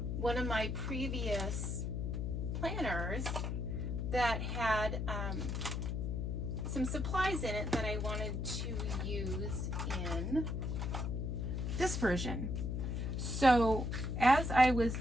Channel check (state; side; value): noise; left; hum, 1 dB below the sound